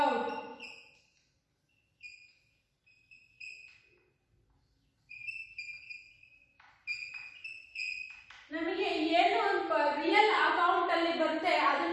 out. ನಮಗೆ ಏನು real account ಅಲ್ಲಿ ಬರುತ್ತೆ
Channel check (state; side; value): identical; both; correlation 1.00